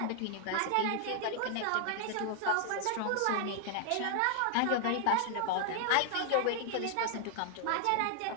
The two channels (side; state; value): both; different; correlation 0.00